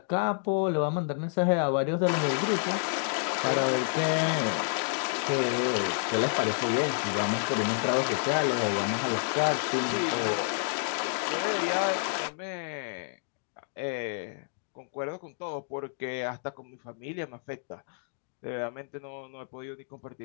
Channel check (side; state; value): right; silent; digital silence